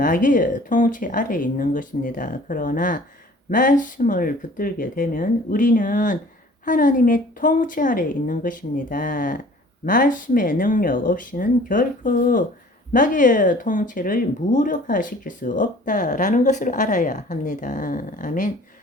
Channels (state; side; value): normal; both; correlation 0.50